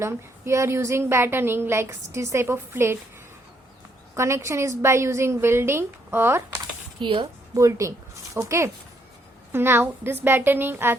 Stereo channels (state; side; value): normal; both; correlation 0.72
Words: we are using battening like this type of plate. Connection is by using welding or here bolting. Okay. Now this battening are